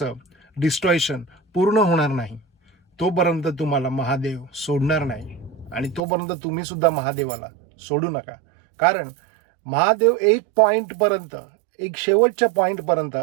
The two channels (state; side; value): drops out; left; at 6.0 s